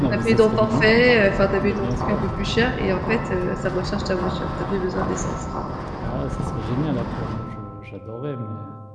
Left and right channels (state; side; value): identical; both; correlation 1.00